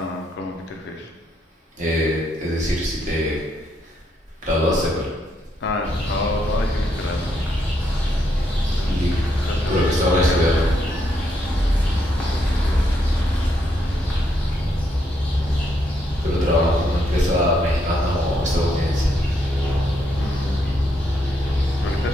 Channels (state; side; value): normal; both; correlation 0.77